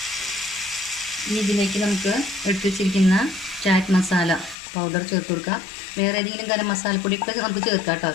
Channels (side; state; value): right; drops out; at 4.5 s